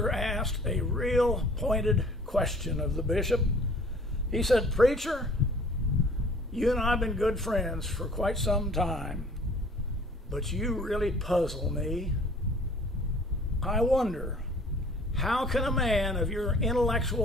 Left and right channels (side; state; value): both; normal; correlation 0.52